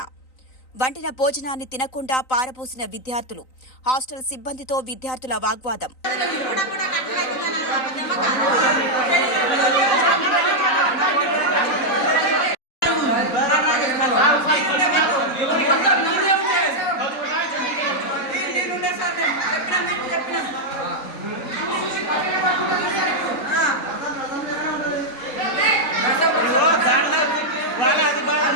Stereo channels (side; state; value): right; late; 3.9 ms